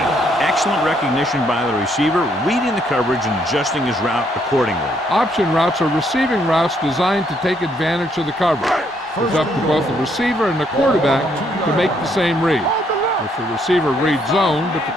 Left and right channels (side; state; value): both; normal; correlation 0.71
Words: Excellent recognition by the receiver, reading the coverage and adjusting his route accordingly. Option routes are receiving routes designed to take advantage of the coverage. It's up to both the receiver and the quarterback to make the same read. If the receiver reads zone, but the